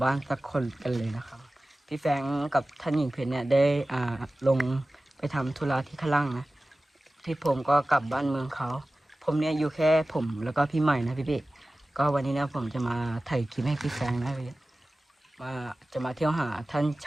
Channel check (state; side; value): normal; both; correlation 0.97